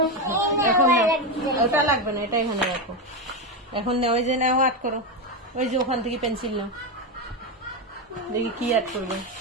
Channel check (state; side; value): normal; both; correlation 0.11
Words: এখন ওটা লাগবে না, এটা এখানে রাখো। এখন নাও, ওই যে নাও, আট করো। ওই যে ওখান থেকে পেন্সিল নাও, দেখি কি অ্যাড করবে,